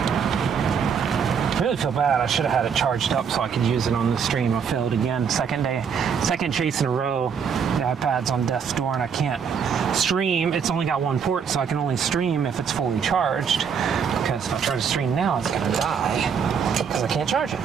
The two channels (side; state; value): left; quieter; 6.9 dB